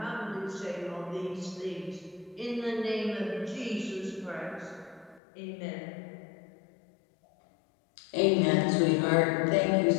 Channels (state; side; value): drops out; right; at 5.2 s